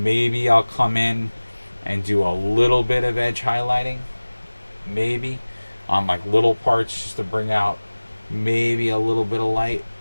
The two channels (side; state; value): both; inverted; correlation -1.00